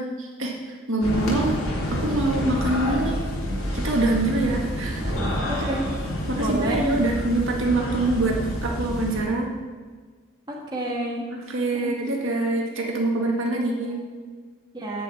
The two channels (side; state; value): both; normal; correlation 0.53